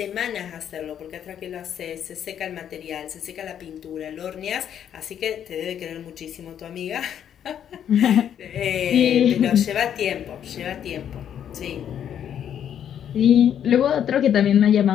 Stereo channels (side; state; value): right; quieter; 9.4 dB